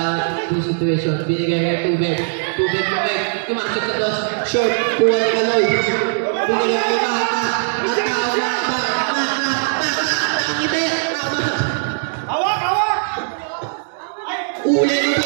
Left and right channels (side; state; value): left; silent; digital silence